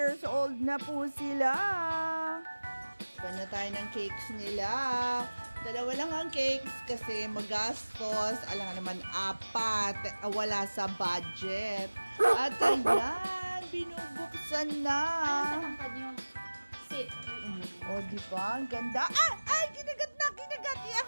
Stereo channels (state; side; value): inverted; both; correlation -1.00